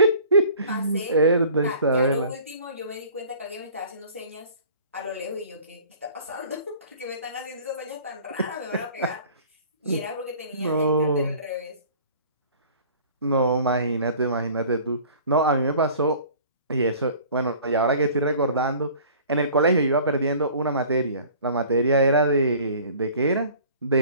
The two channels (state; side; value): inverted; both; correlation -0.48